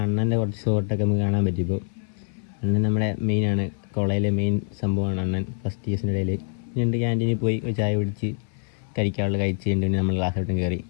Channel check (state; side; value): silent; right; 58 dB below the other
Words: അണ്ണൻ്റെ കുറച്ച് ഷോട്ടൊക്കെ നമുക്ക് കാണാൻ പറ്റിയപ്പോൾ. അണ്ണൻ നമ്മുടെ മെയിനാണ്, കോളേജിലെ മെയിൻ സംഭവമാണ് അണ്ണൻ. ഫസ്റ്റ് ഇയേഴ്സിൻ്റെ ഇടയിൽ ഞണ്ട് ക്യാൻറ്റീനിൽ പോയി ഒരു ചായ കുടിച്ച് കഴിക്കാനുള്ള കഴിച്ച് കഴിഞ്ഞിട്ട് നമ്മൾ ക്ലാസ്സിലത്തും കയറി.